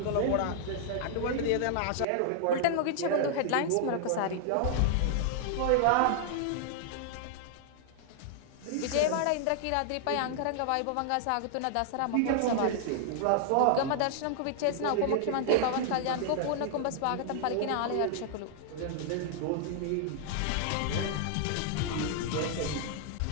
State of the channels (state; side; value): different; both; correlation -0.01